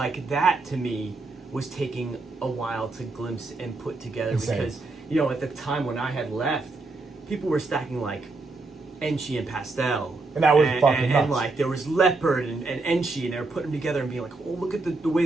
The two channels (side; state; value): left; quieter; 3.4 dB